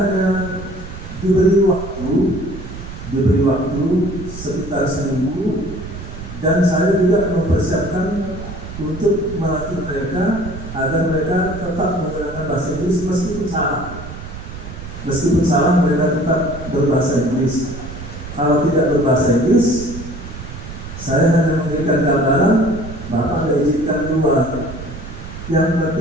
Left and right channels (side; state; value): right; noise; rumble, 11 dB below the sound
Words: diberi waktu sekitar seminggu, dan saya juga mempersiapkan untuk melatih mereka agar mereka tetap menggunakan bahasa Inggris meskipun salah mereka tetap berbahasa Inggris. Kalau tidak berbahasa Inggris, saya hanya memberikan gambaran, Bapak izinkan keluar. Yang